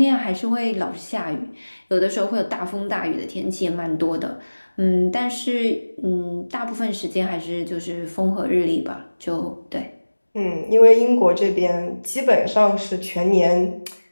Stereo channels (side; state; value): both; inverted; correlation -1.00